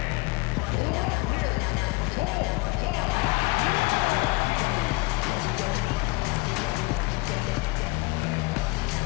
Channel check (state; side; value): quieter; right; 25.1 dB